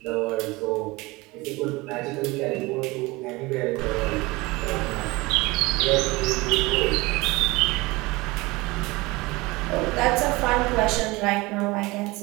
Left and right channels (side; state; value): left; quieter; 22.5 dB